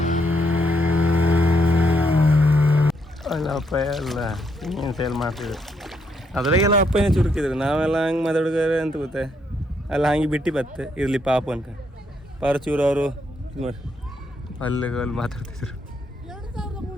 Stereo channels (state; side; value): normal; both; correlation 0.76